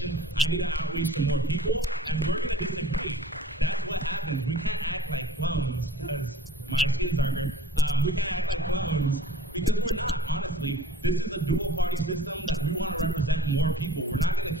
I need to outreach to more people, and we're going to disagree. That's what happens. We can't act like clones, because my skin's darker. We can't act like clones, because we're not, honestly. This is a dual party system that we want to represent more people. We're not going to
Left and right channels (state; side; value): normal; both; correlation 0.46